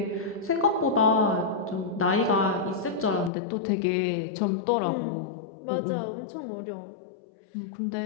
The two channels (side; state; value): right; drops out; at 3.3 s